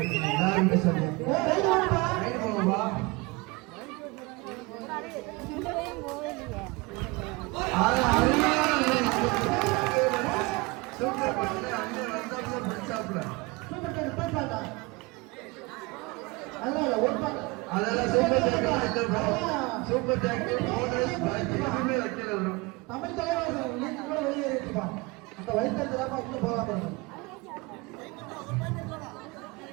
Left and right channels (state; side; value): quieter; left; 25.0 dB